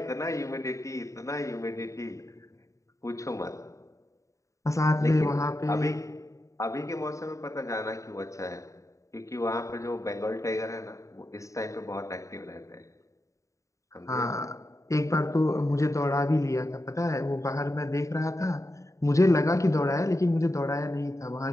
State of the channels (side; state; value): right; late; 0.15 ms